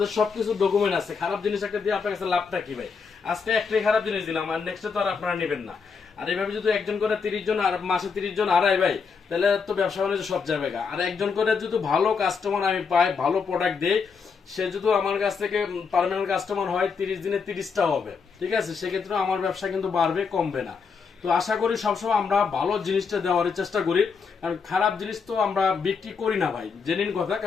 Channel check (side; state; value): right; quieter; 5.5 dB